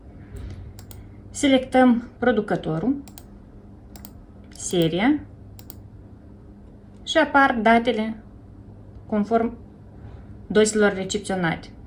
Selectăm producătorul, seria și apar datele conform dozelor recepționate.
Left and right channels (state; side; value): identical; both; correlation 1.00